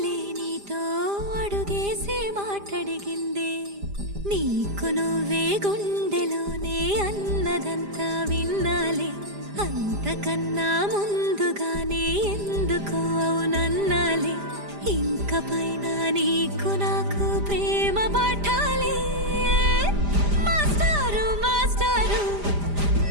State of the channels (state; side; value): late; left; 5.0 ms